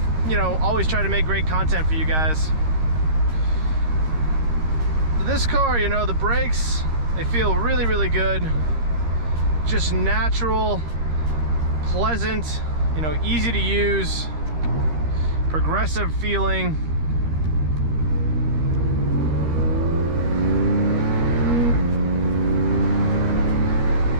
you know, always try to make great content for you guys. This car, you know, the brakes, they feel really, really good. Just natural, pleasant, you know, easy to use, progressive feeling.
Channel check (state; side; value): late; left; 13 ms